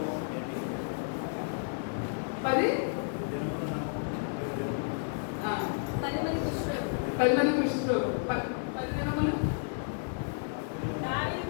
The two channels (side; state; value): right; silent; digital silence